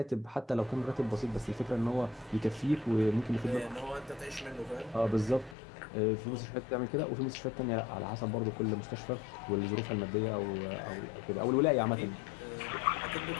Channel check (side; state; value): right; drops out; at 5.6 s